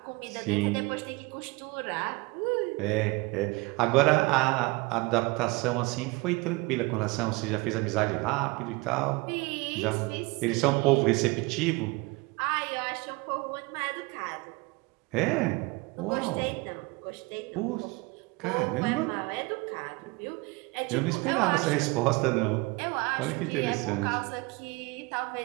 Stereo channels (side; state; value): left; quieter; 25.1 dB